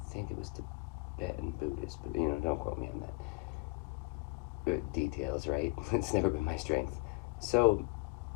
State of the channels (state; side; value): quieter; right; 26.3 dB